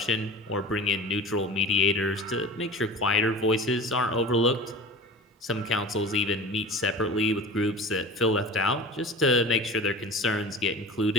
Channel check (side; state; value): both; normal; correlation 0.37